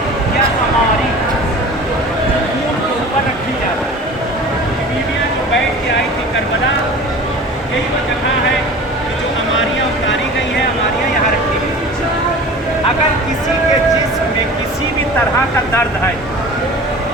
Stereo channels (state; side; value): normal; both; correlation 0.39